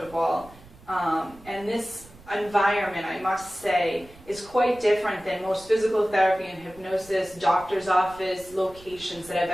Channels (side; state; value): right; noise; rumble, 22 dB below the sound